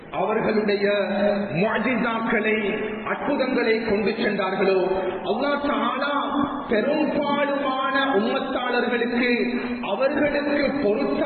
அவர்களுடைய முஅ்ஜிஸாக்களை, அற்புதங்களை கொண்டு சென்றார்களோ அல்லாஹ் தஆலா பெரும்பாலான உம்மத்தாளர்களுக்கு அவர்களுக்கு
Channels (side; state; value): both; identical; correlation 1.00